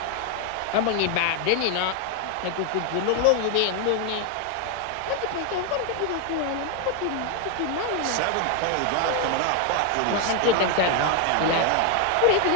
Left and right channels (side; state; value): both; different; correlation 0.01